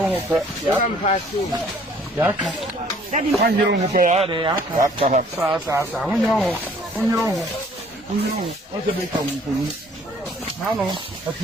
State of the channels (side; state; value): both; normal; correlation 0.57